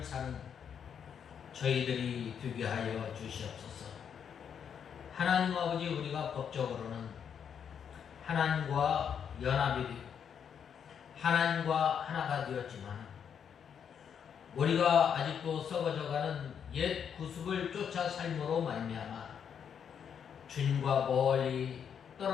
사는 저희들이 되게 하여 주시옵소서. 하나님 아버지, 우리가 법적으로는 하나님과 연합이 되고 하나님과 하나가 되었지만 우리가 아직도 썩어져가는 옛 구습을 쫓아 삶으로 말미암아 주님과 멀리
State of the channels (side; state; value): right; quieter; 7.8 dB